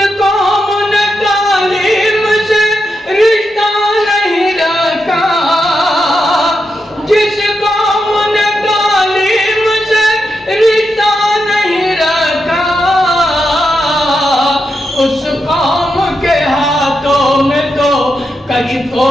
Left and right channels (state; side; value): normal; both; correlation 0.86